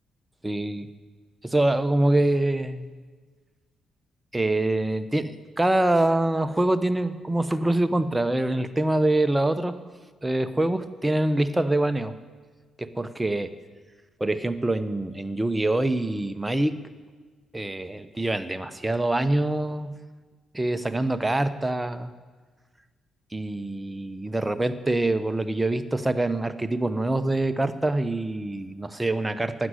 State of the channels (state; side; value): normal; both; correlation 0.96